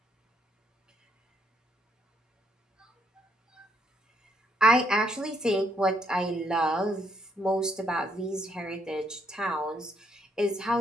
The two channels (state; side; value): normal; both; correlation 0.73